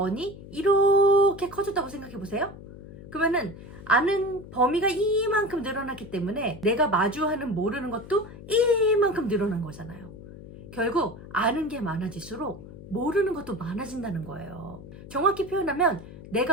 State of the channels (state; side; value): noise; left; hum, 15 dB below the sound